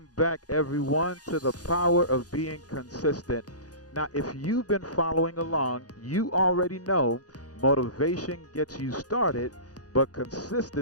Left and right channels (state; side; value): late; right; 0.68 ms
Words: back, everyone, to the power of being consistent. Now, if you've been following along, you already know motivation gets you started, but